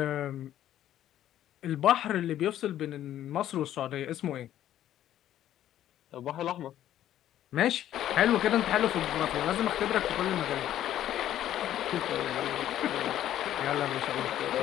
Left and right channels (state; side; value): quieter; right; 12.0 dB